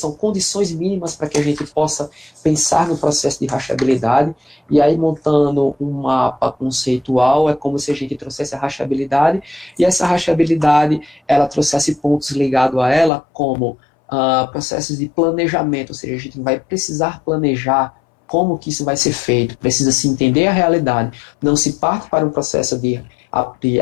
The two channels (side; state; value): right; drops out; at 13.1 s